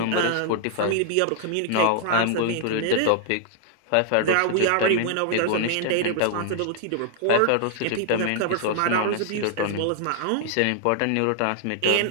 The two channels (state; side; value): different; both; correlation 0.00